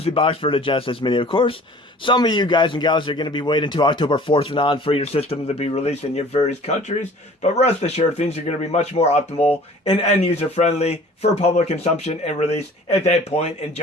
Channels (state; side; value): normal; both; correlation 0.48